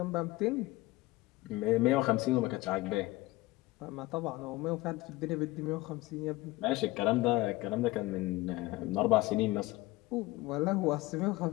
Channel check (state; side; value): quieter; right; 19.8 dB